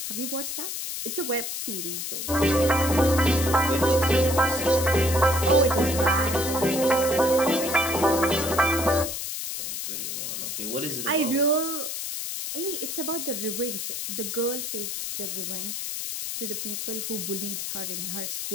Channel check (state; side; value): noise; left; hiss, 4 dB below the sound